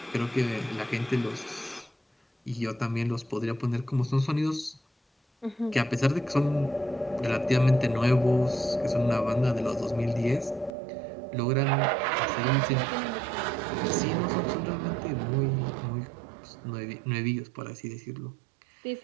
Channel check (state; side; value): drops out; left; at 10.7 s